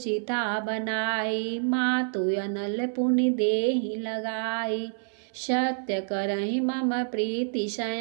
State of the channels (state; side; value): silent; left; 60 dB below the other